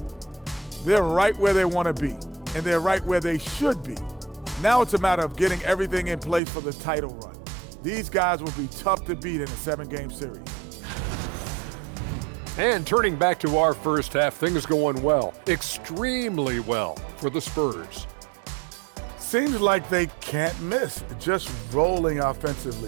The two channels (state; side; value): drops out; left; at 6.4 s